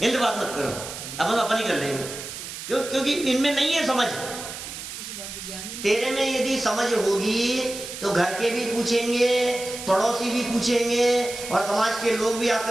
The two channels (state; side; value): noise; right; hiss, 9 dB below the sound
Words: इनसे बात मत करो, अपन ही कर लेंगे। क्यों? क्योंकि इनमें नहीं है समझ। तेरे में यदि समझ होगी तो घर के भी पूछेंगे, पड़ोसी भी पूछेंगे, और समाज के लोग भी